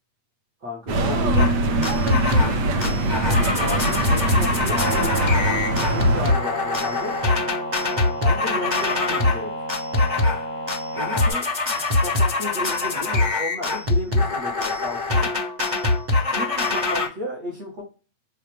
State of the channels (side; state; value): left; late; 8.5 ms